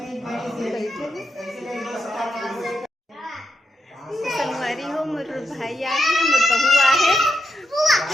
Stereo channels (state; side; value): normal; both; correlation 0.83